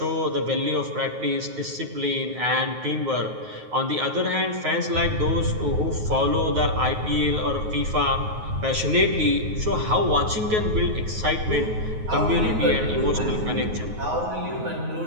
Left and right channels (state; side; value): late; left; 9.4 ms